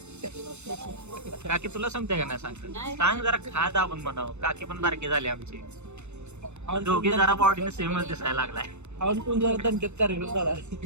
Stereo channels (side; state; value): left; late; 0.82 ms